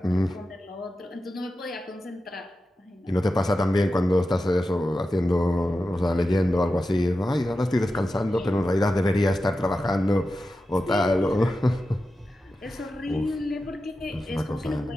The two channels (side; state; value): both; normal; correlation 0.92